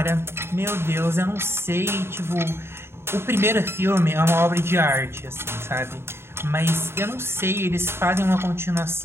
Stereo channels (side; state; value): left; late; 0.12 ms